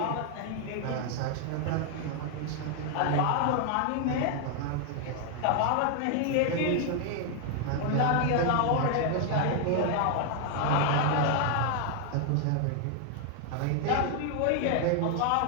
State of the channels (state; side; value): different; both; correlation 0.00